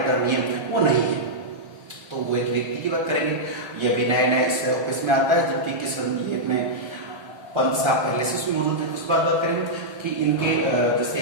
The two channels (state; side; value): late; left; 1.4 ms